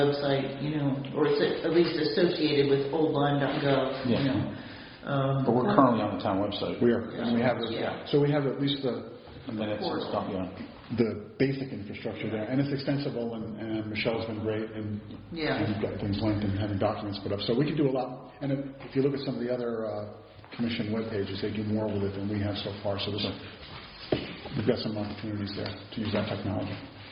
or it's at least associated with oldlyme.gov, But we're currently on the town website. We are, and we have so we have at least the minutes and stuff, the basic infrastructure there, and it's extensible, and Michelle's been great, and you've got things linked and having documents put up. So we can do a lot, and if you look at some of the other commission web pages, they do more with it than we have so far. So we've got some opportunities there to use that technology.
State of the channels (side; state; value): both; identical; correlation 1.00